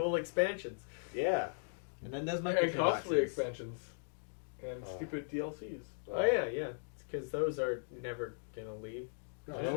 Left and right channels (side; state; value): right; silent; digital silence